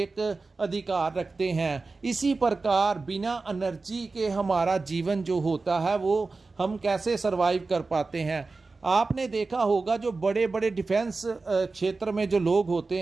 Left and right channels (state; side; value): quieter; left; 3.8 dB